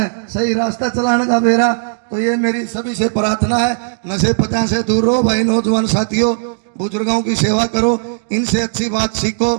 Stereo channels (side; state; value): left; silent; digital silence